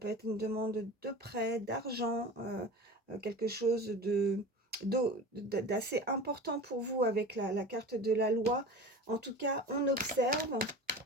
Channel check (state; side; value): normal; both; correlation 0.34